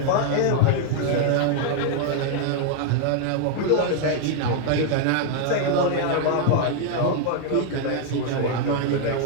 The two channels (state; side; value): different; both; correlation 0.00